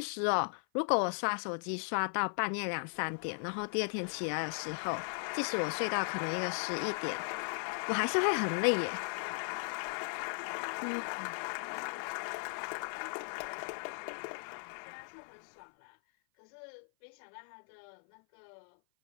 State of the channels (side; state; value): right; silent; 53 dB below the other